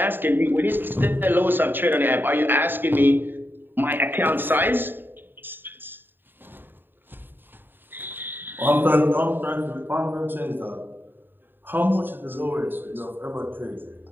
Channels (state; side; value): late; left; 0.095 ms